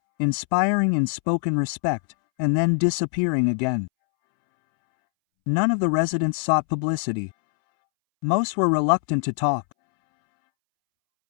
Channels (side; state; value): right; silent; 64 dB below the other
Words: inspiring in spoken respect, and then disappearing again. None of the residents sought publicity. Most were reluctant to talk.